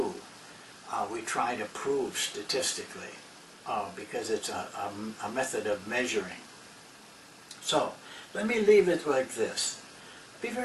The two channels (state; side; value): identical; both; correlation 1.00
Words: we try to prove statistically because it's a method of measuring. So, let me leave it like this. Be